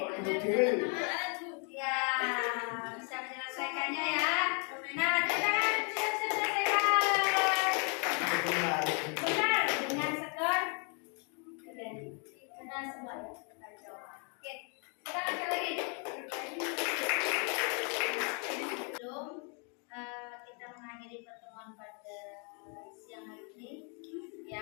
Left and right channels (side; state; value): right; quieter; 37.8 dB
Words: Ya, bisa menyelesaikannya ya. Nah, kita siap-siap selesaikan. Benar, dengan skor benar semua ya. Oke, kita lanjut lagi. Sebelum kita mengakhiri pertemuan pada siang hari ini,